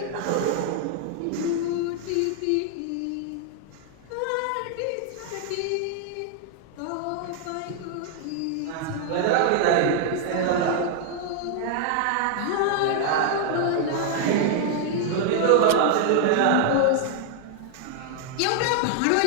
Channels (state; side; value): different; both; correlation 0.00